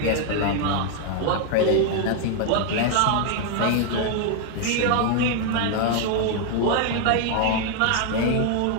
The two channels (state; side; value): different; both; correlation 0.00